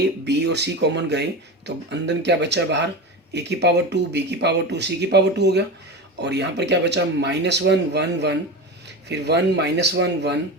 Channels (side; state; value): both; normal; correlation 0.24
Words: बी और सी कॉमन गए, तो अंदर क्या बचा बाहर, ए की पावर 2 बी की पावर 2 सी की पावर 2 हो गया, और यहाँ पर क्या बचा -1 1 1, फिर 1 -1 1,